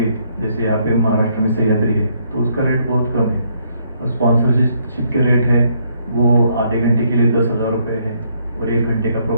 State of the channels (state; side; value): inverted; both; correlation -0.71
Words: जैसे यहाँ पे महाराष्ट्र में सह्याद्री है, तो उसका रेट बहुत कम है। और स्पॉन्सरशिप के रेट है वो आधे घंटे के लिए 10,000 रुपये है, और 1 घंटे का